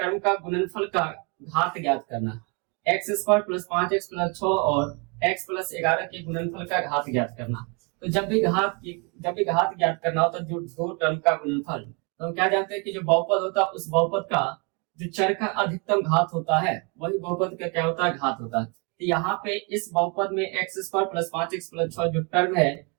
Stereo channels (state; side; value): quieter; left; 32.8 dB